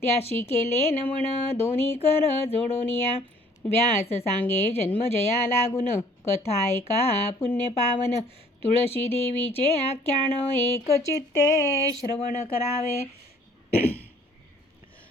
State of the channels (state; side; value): normal; both; correlation 0.57